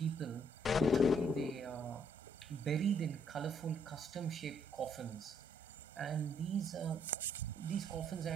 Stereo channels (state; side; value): normal; both; correlation 0.69